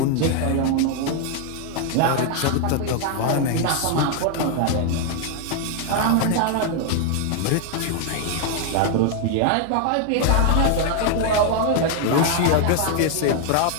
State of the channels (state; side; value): different; both; correlation 0.00